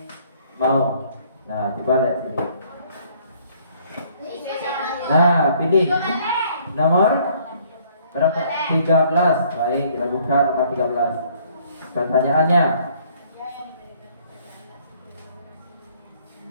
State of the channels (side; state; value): both; inverted; correlation -0.61